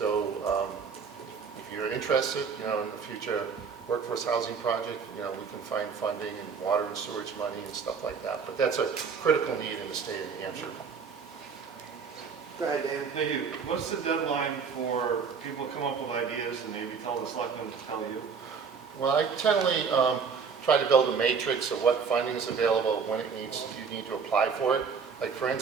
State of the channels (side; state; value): left; quieter; 5.9 dB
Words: if you're interested in the future workforce housing project, we can find funding and water and sewage money and stuff like that. But that's a critical need in the state of New Hampshire. Go ahead, Dan. Thank you. What's the deadline for people to come up with ideas and maybe tell the selectmen to tell you? Well, I generally try to build a matrix of what funding is available, when you need to apply for it. Like for